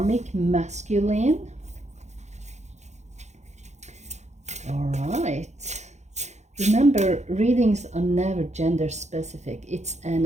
masculine. All right. Remember, readings are never gender specific. It's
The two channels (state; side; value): late; left; 0.33 ms